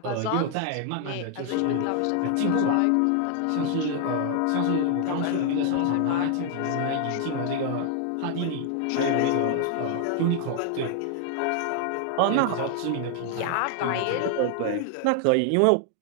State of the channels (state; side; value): different; both; correlation 0.00